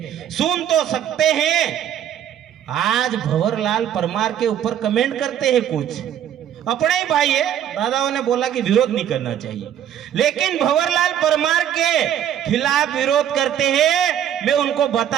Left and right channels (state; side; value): quieter; left; 10.1 dB